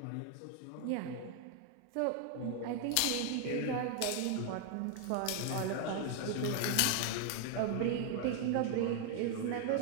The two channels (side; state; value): both; different; correlation 0.00